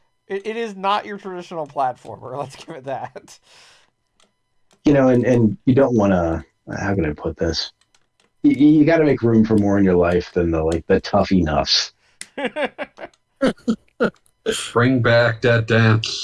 it is not your traditional platformer. Let's give it that. And you don't want to. How can I put this? You got to make room for more in your life than the tough enoughs. Bring back Dead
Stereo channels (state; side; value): identical; both; correlation 1.00